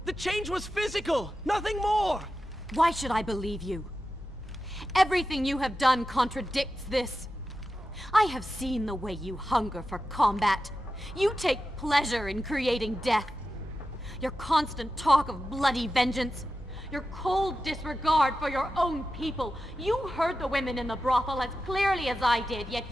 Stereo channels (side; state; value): both; normal; correlation 0.92